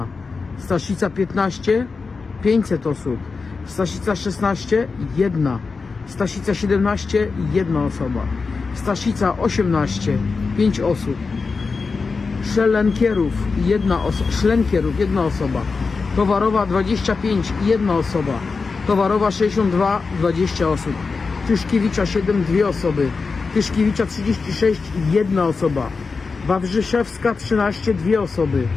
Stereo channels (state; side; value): quieter; right; 4.5 dB